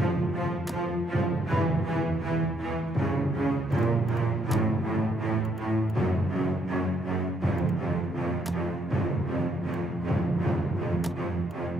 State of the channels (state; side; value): normal; both; correlation 0.73